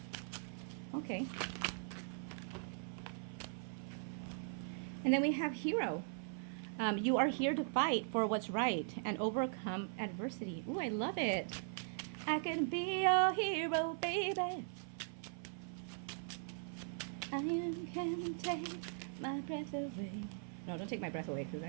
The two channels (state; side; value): silent; left; 51 dB below the other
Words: Okay. And then we have hero. You are here to fight for what's right and overcome adversity. Ooh, I love it. I can be your hero, baby. I can take my breath away. No, don't take my breath away because